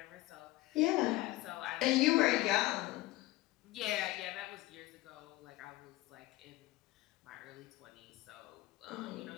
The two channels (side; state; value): right; quieter; 17.9 dB